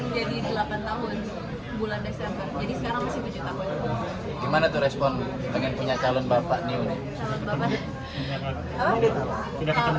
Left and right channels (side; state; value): both; identical; correlation 1.00